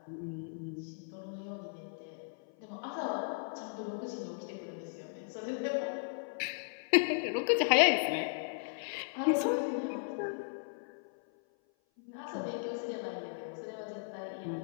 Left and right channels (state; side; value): silent; right; 54 dB below the other